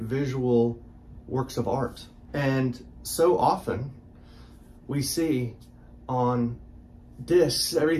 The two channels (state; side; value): identical; both; correlation 1.00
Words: visual works of art. And so often we see on discs,